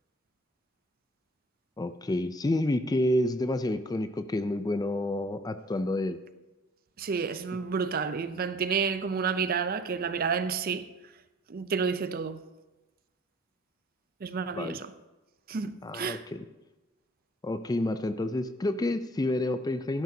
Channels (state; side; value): normal; both; correlation 0.55